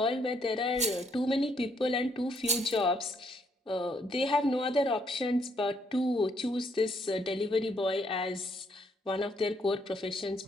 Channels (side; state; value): both; normal; correlation 0.71